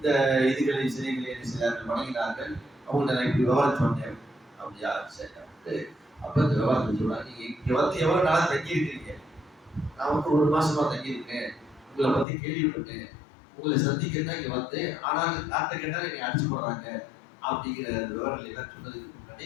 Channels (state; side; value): drops out; right; at 12.2 s